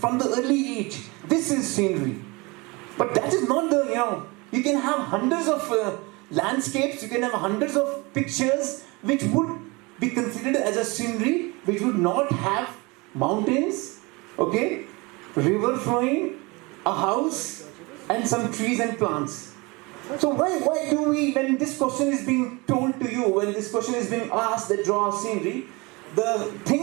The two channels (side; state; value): left; quieter; 25.8 dB